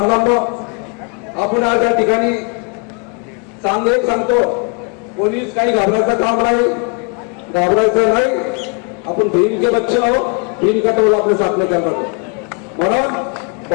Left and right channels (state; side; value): quieter; right; 36.0 dB